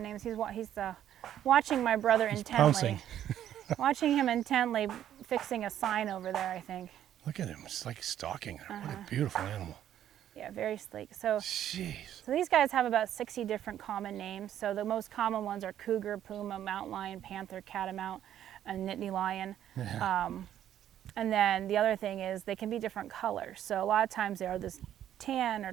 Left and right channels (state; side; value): quieter; left; 11.0 dB